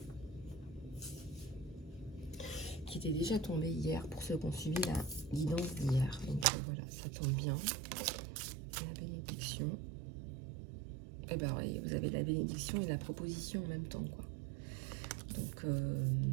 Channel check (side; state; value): left; drops out; at 6.5 s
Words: Qui était déjà tombée hier pour ceux qui ont suivi la guidance d'hier. Donc voilà, ça tombe bien. La bénédiction. Et ben oui, vous avez la bénédiction et la proposition en même temps, quoi. Donc